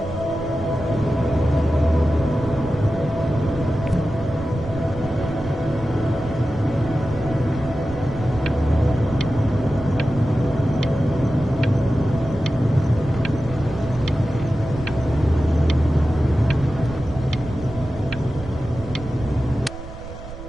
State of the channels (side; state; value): right; noise; rumble, 13 dB below the sound